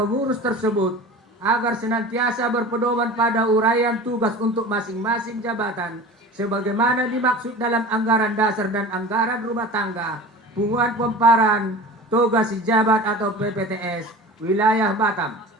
tersebut agar senantiasa berpedoman pada uraian tugas untuk masing-masing jabatan sebagaimana dimaksud dalam anggaran dasar dan anggaran rumah tangga punguan pemparan tugas sejabat atau PPTS wilayah Batam.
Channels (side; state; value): both; normal; correlation 0.37